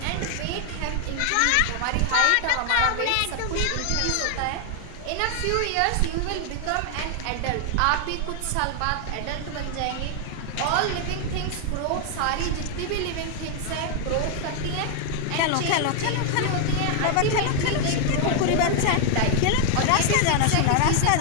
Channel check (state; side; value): different; both; correlation 0.00